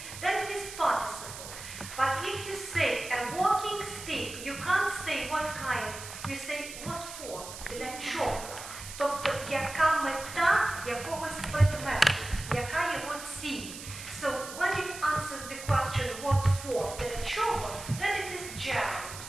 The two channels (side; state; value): right; noise; hiss, 11 dB below the sound